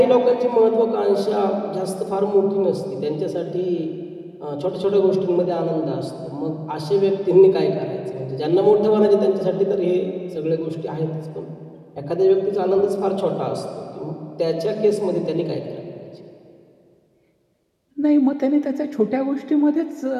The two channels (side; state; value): both; identical; correlation 1.00